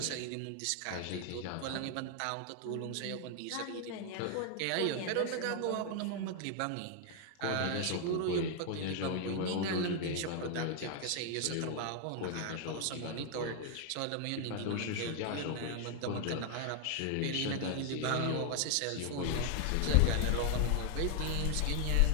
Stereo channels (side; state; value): both; different; correlation 0.00